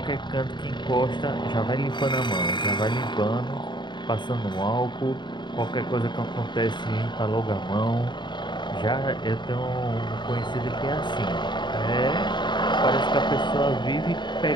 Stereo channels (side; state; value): right; late; 0.22 ms